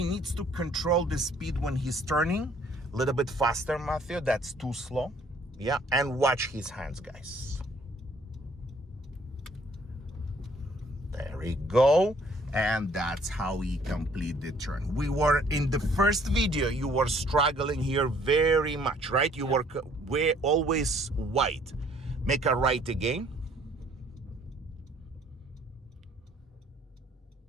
needs to control the speed when he's turning. A little bit faster, Matthew, that's too slow. Yeah, and watch his hands, guys. There we go. And that's how he complete the turn. We were in the first video, you were struggling here very much, right? You were always wide. Make a right again.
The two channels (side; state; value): both; normal; correlation 0.60